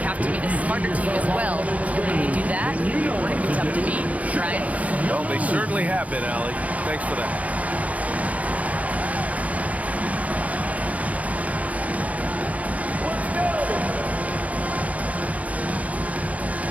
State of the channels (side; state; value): left; late; 0.069 ms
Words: have to be the smarter team as well. And when we do that, we're going to be tough to beat. Brian? Well, they certainly have been, Allie. Thanks for that.